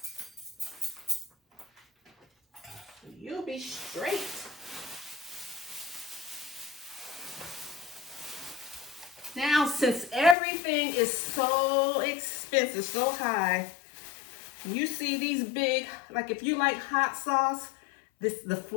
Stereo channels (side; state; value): right; drops out; at 10.4 s